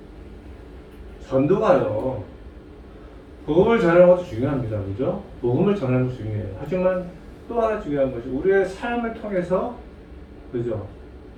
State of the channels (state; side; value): identical; both; correlation 1.00